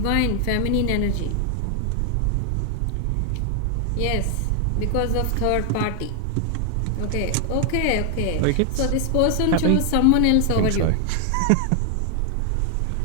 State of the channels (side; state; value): both; different; correlation 0.00